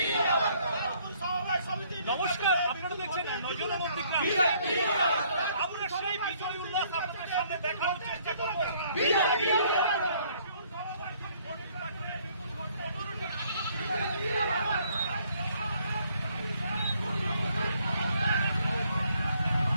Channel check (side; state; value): both; inverted; correlation -0.64